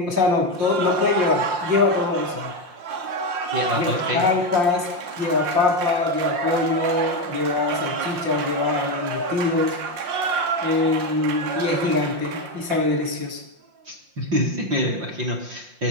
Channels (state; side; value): late; left; 5.7 ms